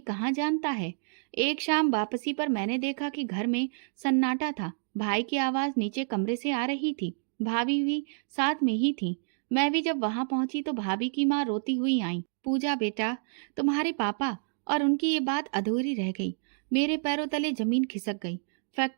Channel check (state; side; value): silent; left; digital silence